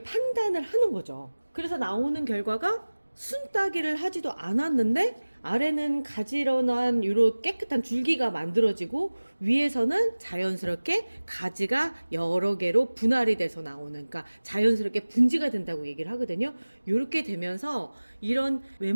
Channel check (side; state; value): both; inverted; correlation -1.00